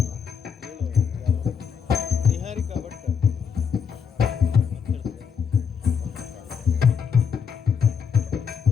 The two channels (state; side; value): quieter; right; 6.8 dB